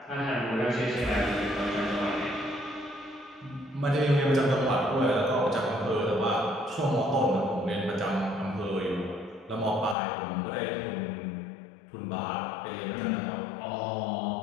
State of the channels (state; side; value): drops out; right; at 10.0 s